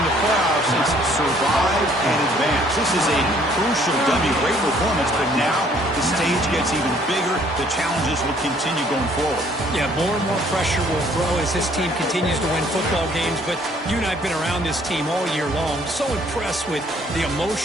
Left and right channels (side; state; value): both; normal; correlation 0.61